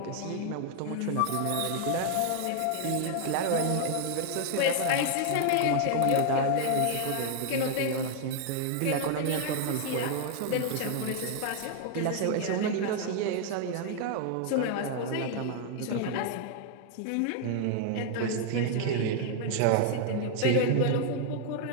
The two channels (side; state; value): both; different; correlation 0.00